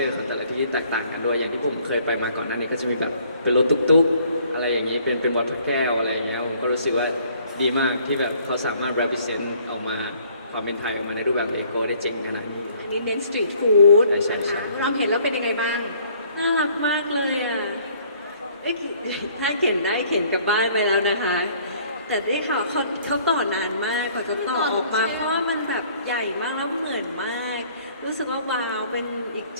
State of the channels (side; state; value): both; inverted; correlation -0.59